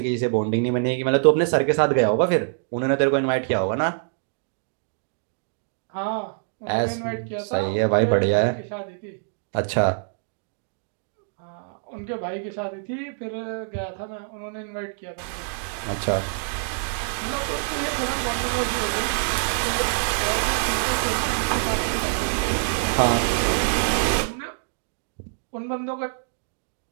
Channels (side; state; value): left; silent; digital silence